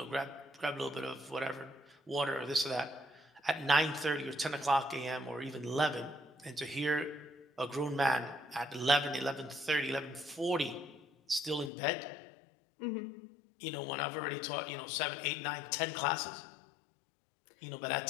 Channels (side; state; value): right; drops out; at 11.7 s